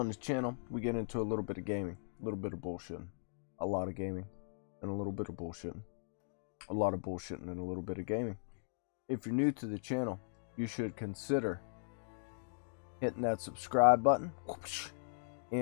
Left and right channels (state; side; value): silent; right; digital silence